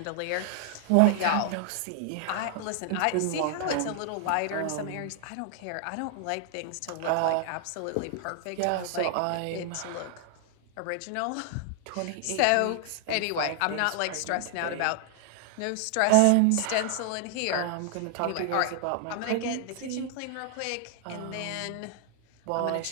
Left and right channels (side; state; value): both; different; correlation 0.00